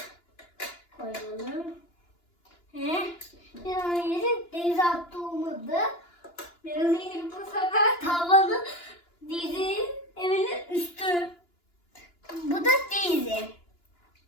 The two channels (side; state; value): right; late; 2.9 ms